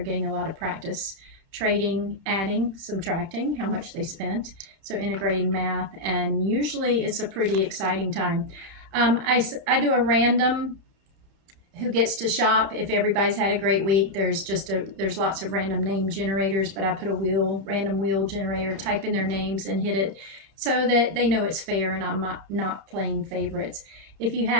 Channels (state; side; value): late; left; 30 ms